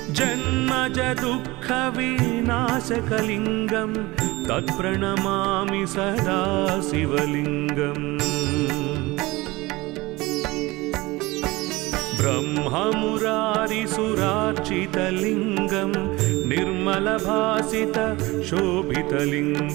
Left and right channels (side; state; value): left; quieter; 21.2 dB